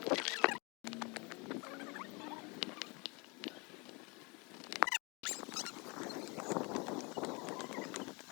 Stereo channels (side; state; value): right; quieter; 28.8 dB